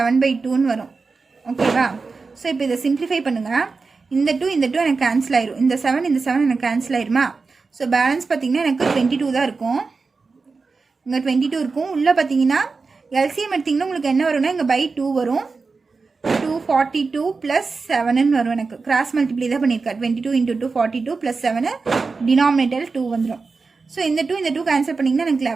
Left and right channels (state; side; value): quieter; left; 4.4 dB